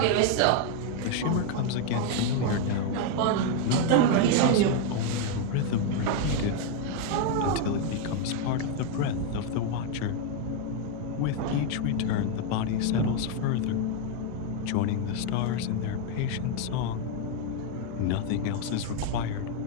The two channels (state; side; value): different; both; correlation 0.01